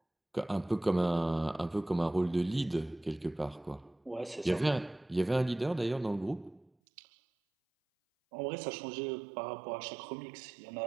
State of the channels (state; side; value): drops out; left; at 6.7 s